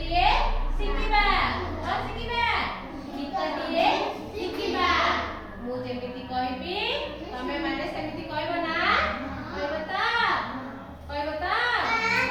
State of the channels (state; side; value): identical; both; correlation 1.00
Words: ଶିଖିବା। ଗୀତଟିଏ ଶିଖିବା। ମୁଁ ଯେମିତି କହିବି ତମେ ମାନେ ସେମିତି କହିବ ନା? କହିବ ତ? କହିବ ତ?